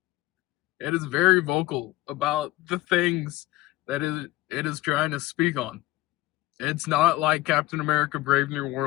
It is very vocal about the things that it is trying to speak on. It's not like Captain America Brave New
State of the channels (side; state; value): right; quieter; 18.2 dB